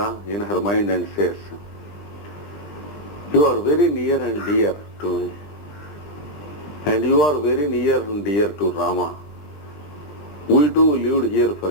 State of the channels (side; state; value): right; late; 20 ms